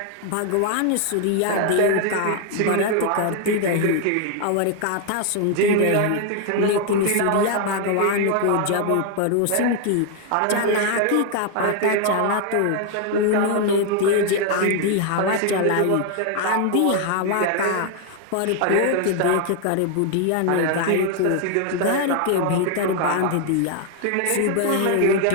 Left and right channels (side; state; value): both; different; correlation 0.00